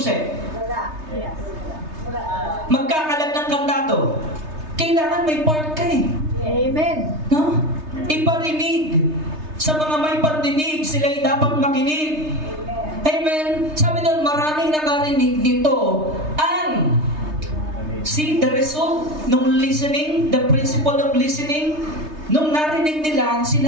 Magkakalat ng kandado. Kailangan may part ka eh. Amen. No? Iparinig. Sa mga may pandinig, sila'y dapat makinig. Amen. Sabi doon, maraming nakarinig nito ang See, the result nung listening, the principle of listening, nung narinig nila,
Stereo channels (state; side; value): late; left; 3.3 ms